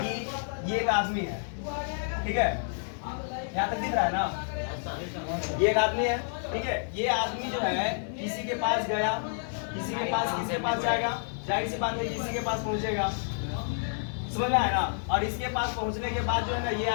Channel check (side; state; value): right; silent; 58 dB below the other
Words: ये एक आदमी है, ठीक है, यहाँ तक दिख रहा है ना, ये एक आदमी है, ठीक है। ये आदमी जो है किसी के पास गया, किसी के पास जाएगा, जाहिर सी बात है किसी के पास पहुंचेगा, समझ में आया ना। और इसके पास पहुंचने के बाद जो है ना, ये